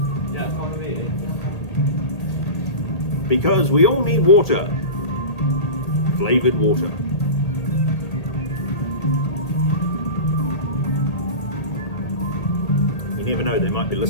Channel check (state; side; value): late; right; 1.8 ms